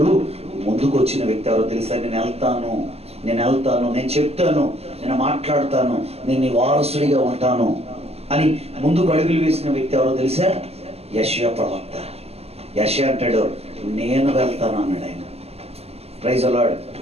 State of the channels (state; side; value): late; left; 0.29 ms